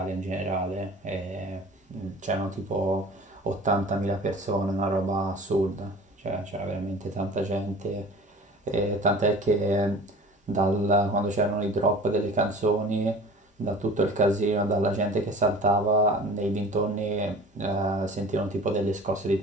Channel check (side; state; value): both; normal; correlation 0.41